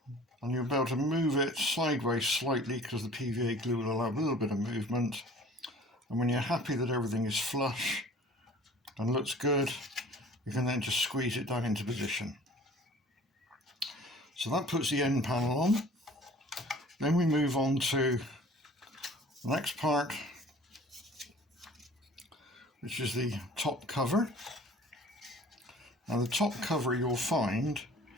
and you'll be able to move it sideways slightly because the PVA glue will allow a little bit of movement. And when you're happy that everything is flush and looks good, you can then just squeeze it down into position. So that puts the end panel on. Then we move on to the next part, which is the top cover. Now the top cover, you'll find,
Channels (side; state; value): both; normal; correlation 0.48